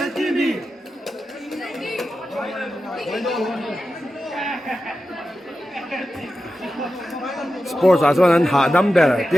Sports 啊，说人下 number，第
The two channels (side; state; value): both; normal; correlation 0.92